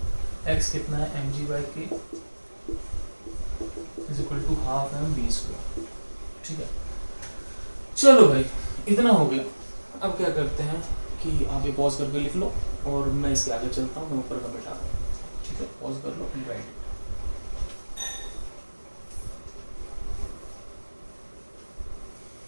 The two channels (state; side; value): inverted; both; correlation -1.00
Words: x कितना है mg/k is equal to half mv², ठीक है। चलो भाई इतना हो गया। अब क्या करते हैं कि आप ये पॉज करके लिख लो और मैं इसके आगे चलता हूँ, मैं ऊपर का बैठा, ठीक है। पॉज कर लो, राइट।